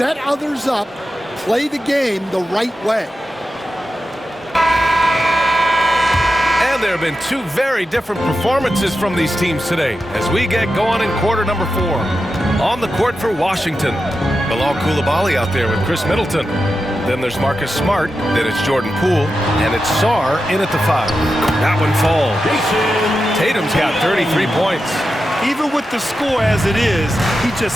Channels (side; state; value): both; normal; correlation 0.90